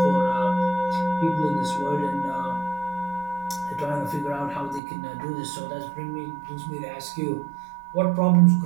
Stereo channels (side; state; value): left; drops out; at 4.8 s